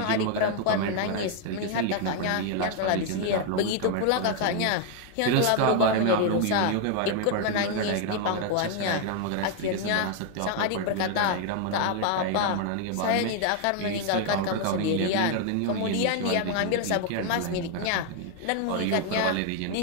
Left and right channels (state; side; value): different; both; correlation 0.00